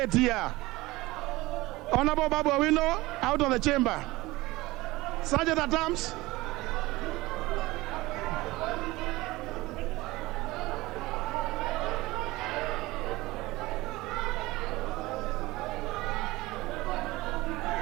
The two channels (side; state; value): left; quieter; 20.1 dB